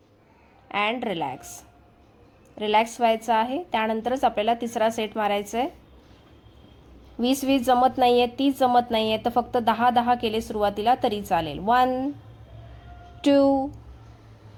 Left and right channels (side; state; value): both; identical; correlation 1.00